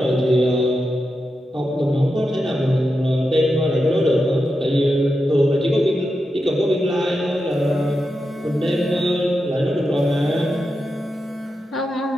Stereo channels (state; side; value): normal; both; correlation 0.88